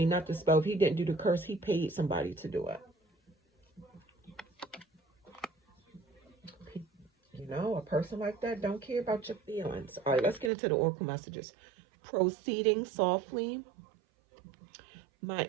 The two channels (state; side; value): drops out; left; at 10.5 s